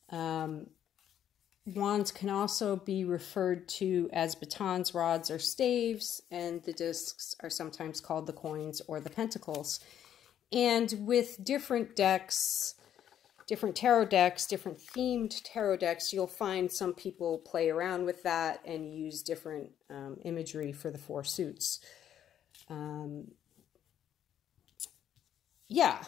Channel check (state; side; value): quieter; right; 10.2 dB